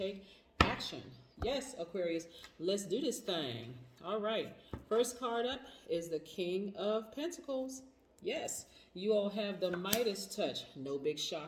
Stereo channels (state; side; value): identical; both; correlation 1.00